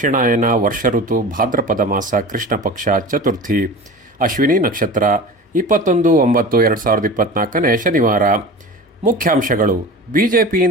ವರ್ಷ ಋತು ಭಾದ್ರಪದ ಮಾಸ ಕೃಷ್ಣ ಪಕ್ಷ ಚತುರ್ಥಿ ಅಶ್ವಿನಿ ನಕ್ಷತ್ರ 21/9/2024 ಶನಿವಾರ. ಮುಖ್ಯಾಂಶಗಳು:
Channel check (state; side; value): normal; both; correlation 0.35